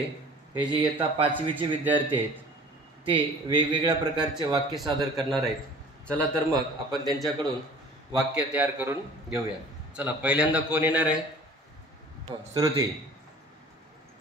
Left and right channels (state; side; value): normal; both; correlation 0.46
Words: हे जे इयत्ता 5वीचे विद्यार्थी आहेत ते वेगवेगळ्या प्रकारचे वाक्य सादर करणार आहेत। चला तर मग आपण त्यांच्याकडून वाक्य तयार करून घेऊया। चला, पहिल्यांदा कोण येणार आहे? Shruti.